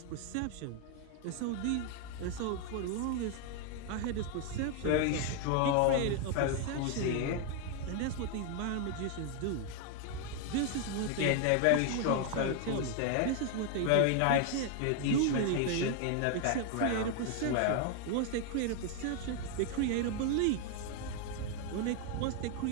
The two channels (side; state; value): both; different; correlation 0.00